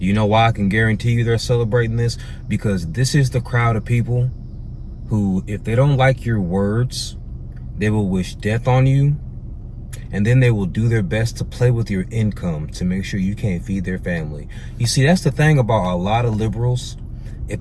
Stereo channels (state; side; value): identical; both; correlation 1.00